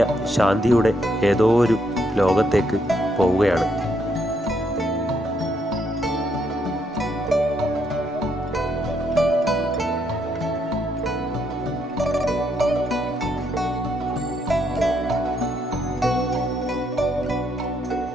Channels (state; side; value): normal; both; correlation 0.75